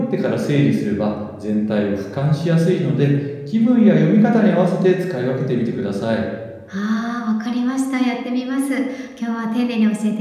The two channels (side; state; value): both; identical; correlation 1.00